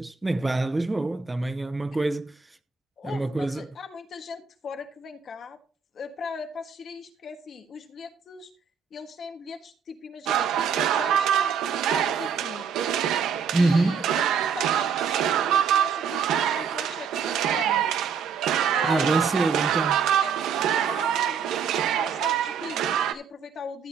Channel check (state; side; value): quieter; left; 6.3 dB